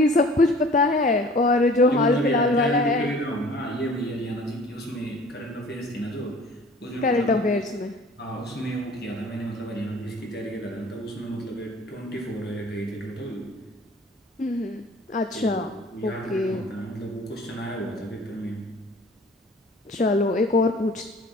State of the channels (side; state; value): both; normal; correlation 0.48